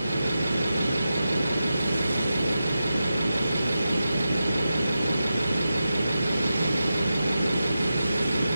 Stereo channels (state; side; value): inverted; both; correlation -0.90